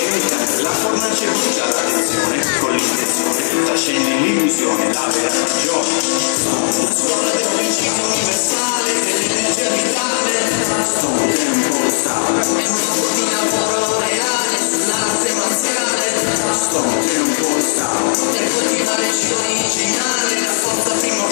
la fornace brucia l'attenzione con l'intenzione, trascende l'illusione, la vera ragione. Sono una scuola del principio.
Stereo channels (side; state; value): right; silent; digital silence